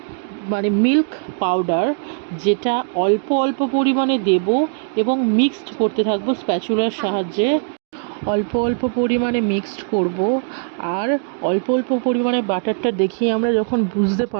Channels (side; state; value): left; silent; digital silence